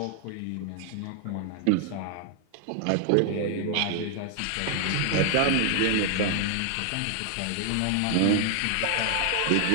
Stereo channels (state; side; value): different; both; correlation 0.00